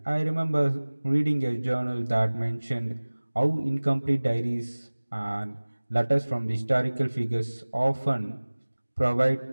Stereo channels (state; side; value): inverted; both; correlation -1.00